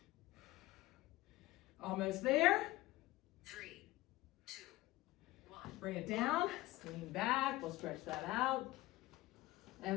Almost there. 3, 2, 1. Bring it down. Lean back. We'll stretch that out.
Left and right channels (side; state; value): right; quieter; 18.1 dB